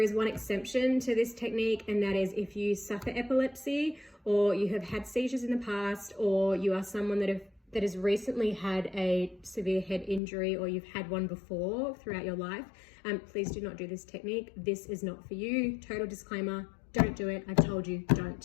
is one exception to this technique, and that is if you suffer epilepsy, or you have had seizures in the past, or you are someone that has recently had a severe head injury, or you've had one before throughout your life. Please do not do this technique. This is not for you. Total disclaimer, don't do it. I've told you,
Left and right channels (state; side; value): drops out; right; at 10.2 s